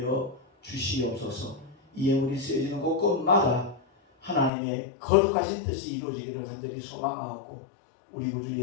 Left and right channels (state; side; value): drops out; right; at 4.5 s